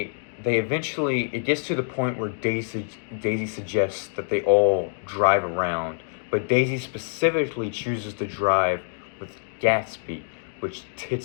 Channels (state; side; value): silent; right; digital silence